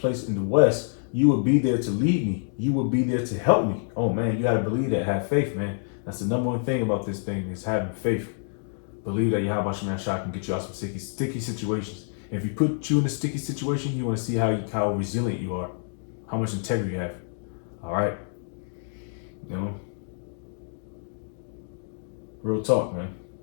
in the west, you would be there to lead me. You would be there to help me. Oh man, you got to believe that. Have faith, man. That's the number one thing about this thing is having faith. Believe that Yahweh Shemashah can get you out some sticky situations. And if he put you in a sticky situation, you want to see how resilient you are, how much integrity you have. All right. Real talk, man.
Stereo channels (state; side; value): silent; right; digital silence